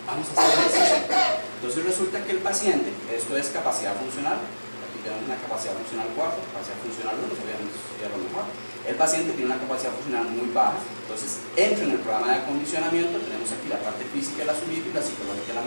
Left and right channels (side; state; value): both; inverted; correlation -1.00